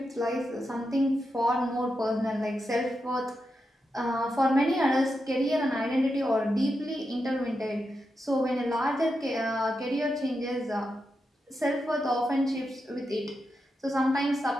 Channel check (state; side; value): normal; both; correlation 0.87